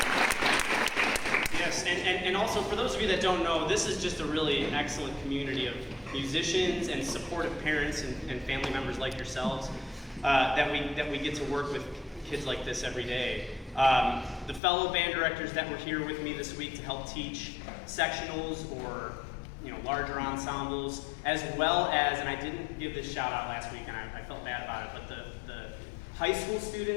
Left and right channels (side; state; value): right; drops out; at 14.6 s